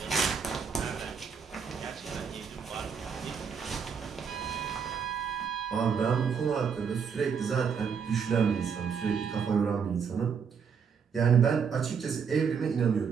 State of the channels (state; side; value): quieter; left; 6.5 dB